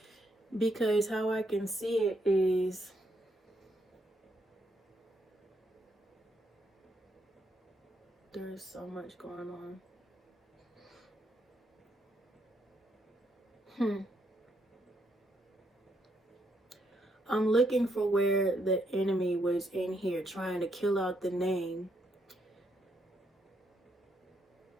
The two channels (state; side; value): normal; both; correlation 0.76